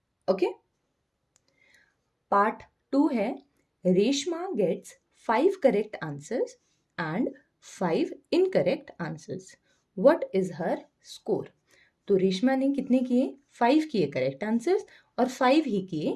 ओके। पार्ट 2 है, Reshma gets 5 correct answers and 5 incorrect answers, what is her score. तो रेशमा ने कितने किए, 5 किए करेक्ट आंसर्स और 5 ही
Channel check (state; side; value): identical; both; correlation 1.00